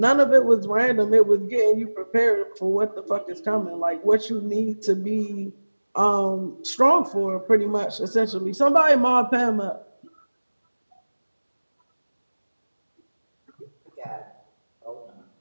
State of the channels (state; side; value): inverted; both; correlation -1.00